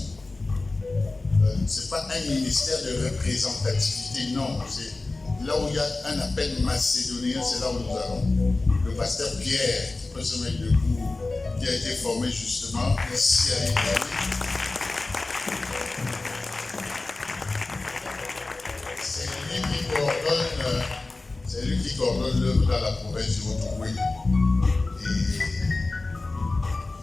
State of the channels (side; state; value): right; quieter; 3.3 dB